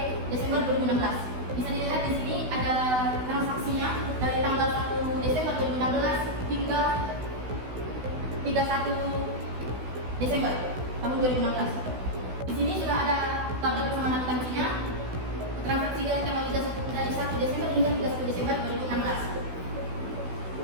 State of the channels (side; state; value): left; late; 16 ms